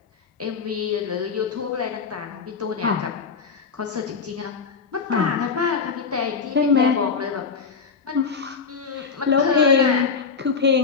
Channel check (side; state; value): right; quieter; 5.4 dB